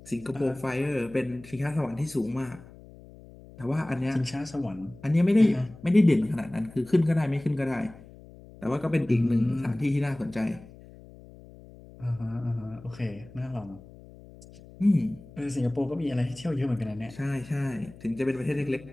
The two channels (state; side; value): noise; left; hum, 20 dB below the sound